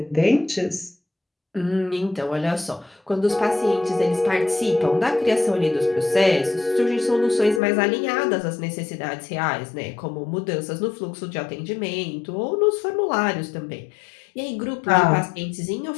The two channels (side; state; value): right; drops out; at 7.6 s